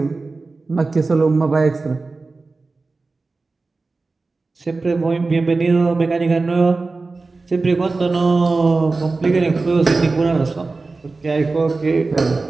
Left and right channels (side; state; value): left; quieter; 3.7 dB